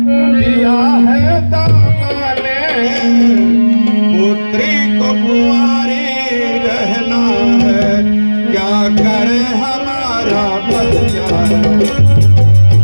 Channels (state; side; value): inverted; both; correlation -1.00